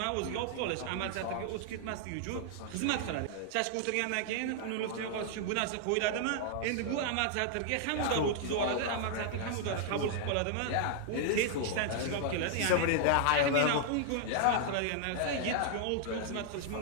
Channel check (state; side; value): different; both; correlation 0.00